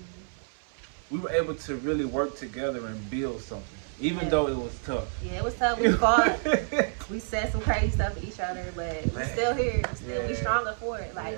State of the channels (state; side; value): silent; left; 59 dB below the other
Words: we were able to really work together and build something, even though it was tough. Yeah, it was tough. We fought. We said some crazy stuff to each other, but we're still here. We stronger for it.